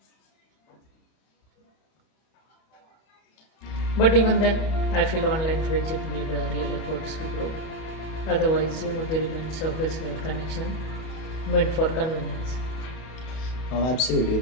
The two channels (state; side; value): late; right; 31 ms